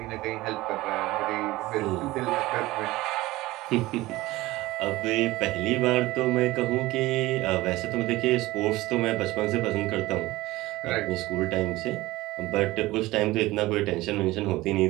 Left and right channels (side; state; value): left; quieter; 18.7 dB